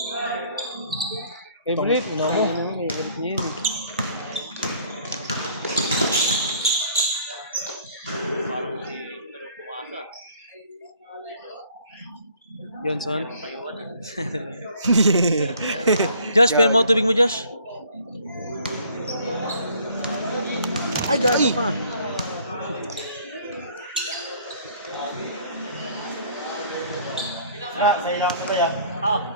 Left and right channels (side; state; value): both; inverted; correlation -0.58